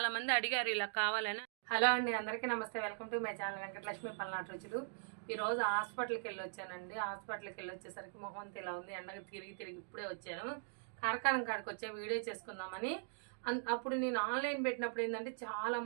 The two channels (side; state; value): left; silent; digital silence